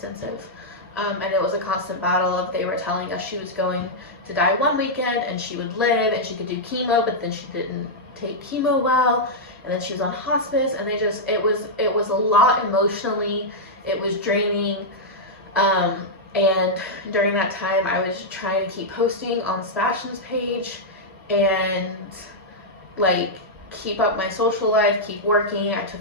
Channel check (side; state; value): both; normal; correlation -0.06